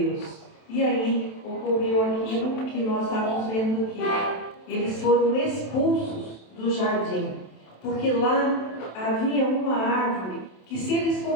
E aí ocorreu aquilo que nós estávamos vendo aqui. Eles foram expulsos do jardim, porque lá havia uma árvore que, se eles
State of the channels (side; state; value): right; late; 27 ms